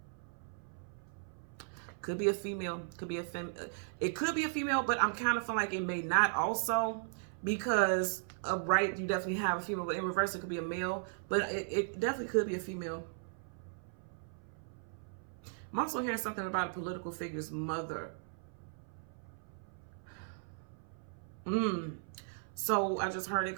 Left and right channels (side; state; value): left; silent; 53 dB below the other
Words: Could be a female, could be a it could be a female, but I'm kind of feeling like it may not also, because of right, you definitely have a female, but in reverse, it could be a male, but it definitely could be a female. I'm also hearing something about a political figure's mother. So I just heard it